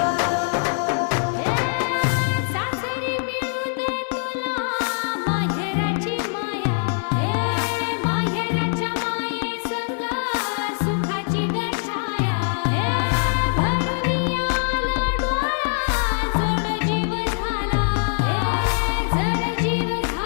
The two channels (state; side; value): silent; right; 57 dB below the other